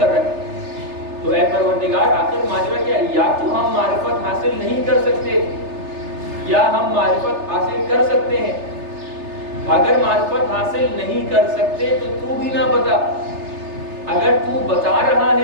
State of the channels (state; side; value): late; left; 3.3 ms